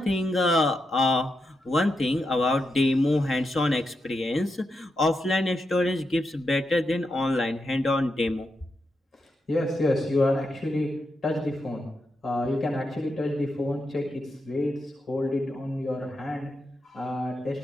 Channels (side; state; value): both; normal; correlation 0.85